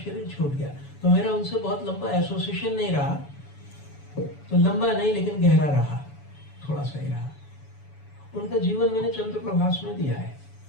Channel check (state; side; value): late; right; 7.1 ms